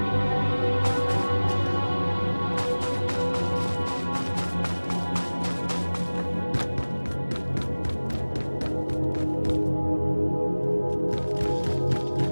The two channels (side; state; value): both; inverted; correlation -1.00